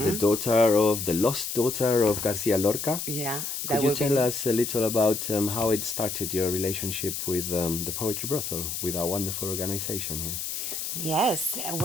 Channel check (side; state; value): left; noise; hiss, 4 dB below the sound